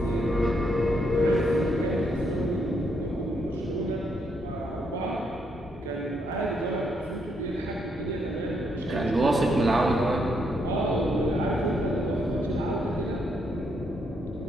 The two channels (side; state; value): both; normal; correlation 0.76